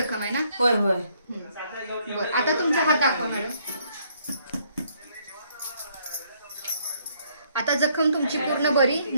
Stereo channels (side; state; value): both; inverted; correlation -0.68